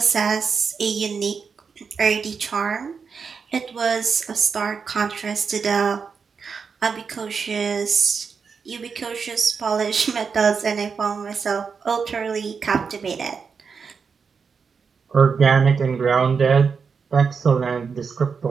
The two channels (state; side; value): quieter; left; 5.7 dB